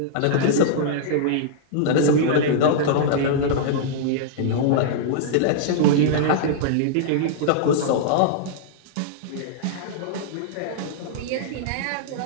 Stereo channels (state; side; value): different; both; correlation -0.02